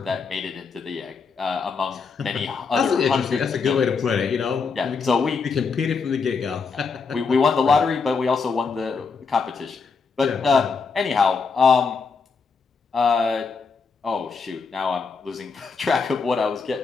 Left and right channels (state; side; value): quieter; right; 5.1 dB